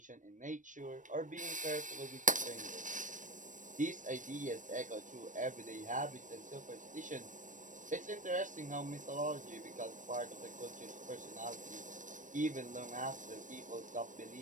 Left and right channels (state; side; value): late; left; 0.37 ms